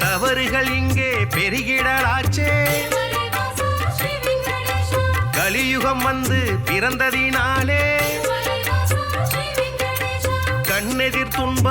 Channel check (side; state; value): left; noise; hum, 23 dB below the sound